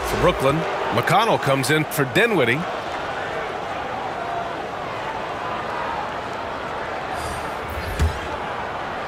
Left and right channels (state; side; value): identical; both; correlation 1.00